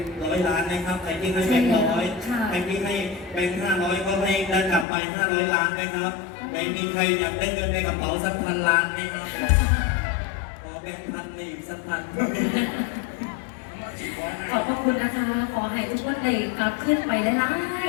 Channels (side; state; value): right; drops out; at 4.9 s